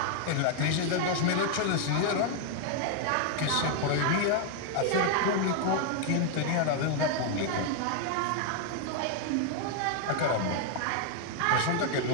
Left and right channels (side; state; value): both; different; correlation 0.00